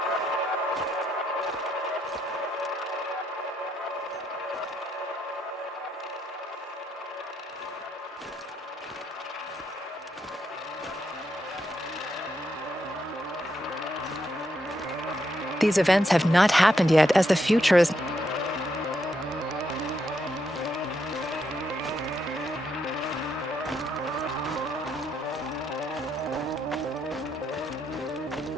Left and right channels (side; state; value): both; normal; correlation 0.79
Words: These events have not happened yet, as the future is...